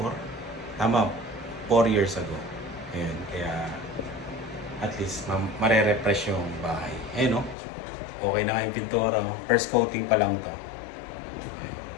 4? Tama, 4 years ago. Ayun, kaya at least mare-refresh yung bahay. Ayun, no? Okay na nga yung pintura. First coating pa lang to. Ayun.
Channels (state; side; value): drops out; right; at 7.6 s